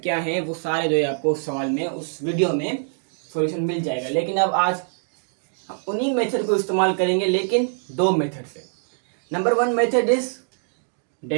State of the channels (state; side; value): silent; left; 61 dB below the other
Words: क्या हैं, वो सारे जो है आपको उस सवाल में, उस वीडियो में सॉल्यूशन मिल जाएगा। लेकिन अब आज उन्हीं मेथड को इस्तेमाल करेंगे, लेकिन 2 मेथड से। Number 1 method is